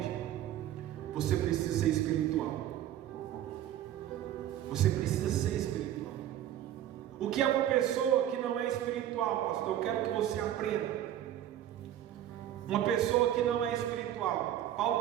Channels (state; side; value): quieter; left; 11.7 dB